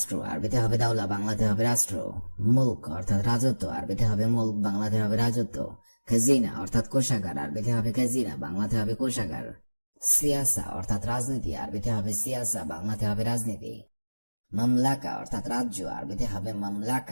আরবিতে হবে দাওলা, বাংলাতে হবে রাষ্ট্র। মুলক অর্থাৎ রাজত্ব, আরবিতে হবে মুলক, বাংলাতে হবে রাজত্ব। খাজিনা অর্থাৎ কোষাগার, আরবিতে হবে খাজিনা, বাংলাতে হবে কোষাগার। সিয়াসা অর্থাৎ রাজনীতি, আরবিতে হবে সিয়াসা, বাংলাতে হবে রাজনীতি। মামলাকা অর্থাৎ রাজ্য, আরবিতে হবে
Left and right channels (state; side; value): inverted; both; correlation -1.00